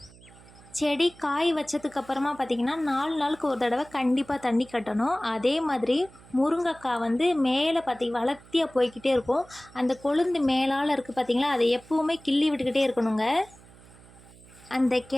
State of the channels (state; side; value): noise; right; hum, 23 dB below the sound